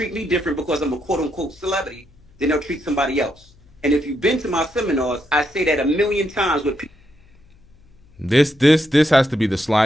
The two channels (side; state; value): left; noise; hum, 28 dB below the sound